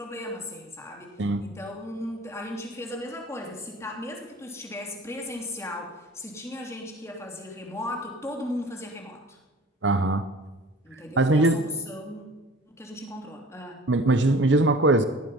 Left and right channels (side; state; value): both; normal; correlation 0.44